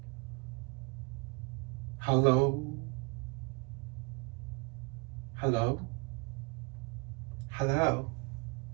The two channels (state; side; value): quieter; left; 29.0 dB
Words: Hello? Hello? Hello?